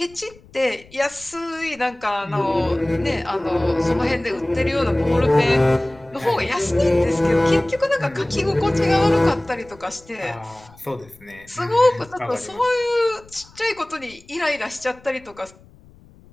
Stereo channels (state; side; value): noise; left; rumble, 25 dB below the sound